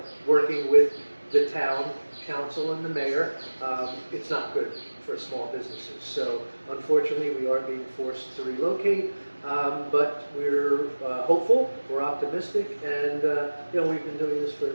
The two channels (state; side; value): inverted; both; correlation -1.00